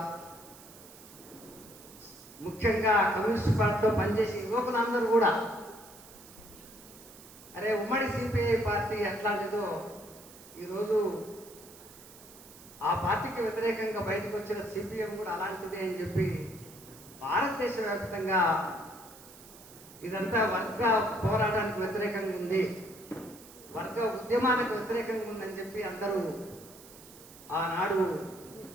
ముఖ్యంగా కమ్యూనిస్ట్ పార్టీలో పనిచేసే యువకులందరూ కూడా, అరే ఉమ్మడి సిపిఐ పార్టీ ఎట్లాంటిదో ఈరోజు ఆ పార్టీకి వ్యతిరేకంగా బయటకు వచ్చిన సిపిఎం కూడా అలాంటిదే అని చెప్పి భారతదేశ వ్యాప్తంగా ఇదంతా వర్గ పోరాటానికి వ్యతిరేకంగా ఉంది, వర్గ ఉద్యమానికి వ్యతిరేకంగా ఉందని చెప్పి అందరూ ఆనాడు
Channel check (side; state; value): right; noise; hiss, 19 dB below the sound